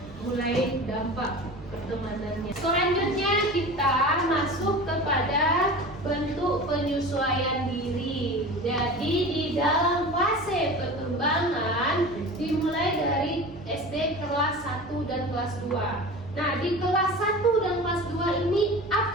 mulai dampak pertemanannya. Selanjutnya kita masuk kepada bentuk penyesuaian diri. Jadi di dalam fase perkembangan dimulai dari SD kelas 1 dan kelas 2. Nah, di kelas 1 dan kelas 2 ini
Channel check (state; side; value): normal; both; correlation 0.34